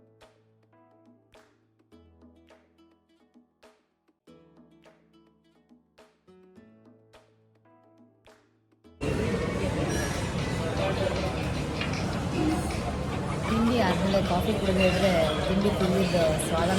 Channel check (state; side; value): identical; both; correlation 1.00